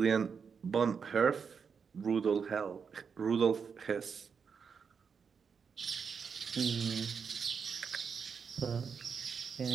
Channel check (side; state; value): left; quieter; 6.2 dB